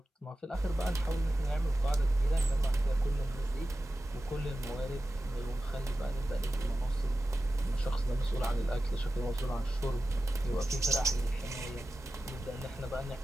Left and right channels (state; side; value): normal; both; correlation 0.93